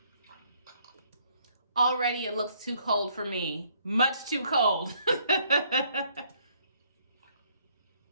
Already it looks too cold for me. Much too cold. How's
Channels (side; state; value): both; inverted; correlation -0.66